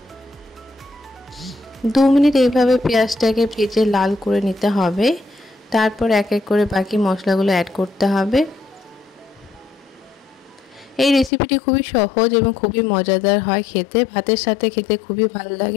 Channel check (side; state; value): right; drops out; at 11.3 s